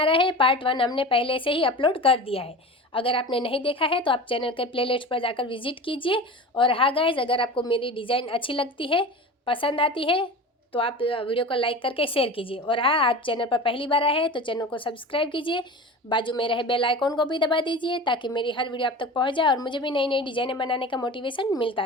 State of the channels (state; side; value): normal; both; correlation 0.33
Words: रहे हैं। पार्ट 1 हमने पहले से ही अपलोड कर दिया है। अगर आपने नहीं देखा है तो आप चैनल के प्लेलिस्ट पर जाकर विजिट कीजिए। और हाँ गाइस, अगर आपको मेरी डिज़ाइन अच्छी लगती है, पसंद आती है, तो आप वीडियो को लाइक करके शेयर कीजिए। और हाँ, आप चैनल पर पहली बार आए हैं तो चैनल को सब्सक्राइब कीजिए, बाजू में रहे बेल आइकॉन को भी दबा दीजिए ताकि मेरी हर वीडियो आप तक पहुँच जाए और मुझे भी नई नई डिज़ाइनें बनाने का मोटिवेशन मिलता